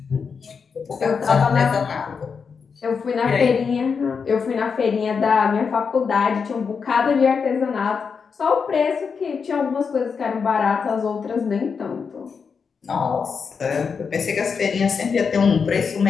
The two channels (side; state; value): right; quieter; 5.8 dB